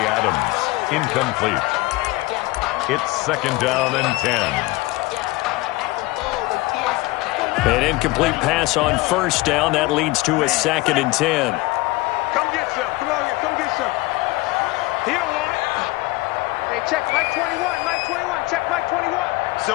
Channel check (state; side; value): quieter; right; 21.1 dB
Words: Adams, incomplete. It's 2nd down and 10. An incomplete pass on first down. That leads to a 2nd and 10. Come get some. Come on here. Come get some. He don't want it. Hey, check Mike 21. Mike 21. Check Mike 21.